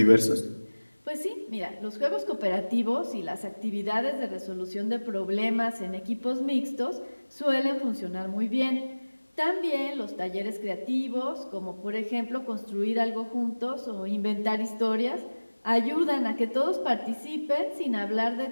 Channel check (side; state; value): both; inverted; correlation -1.00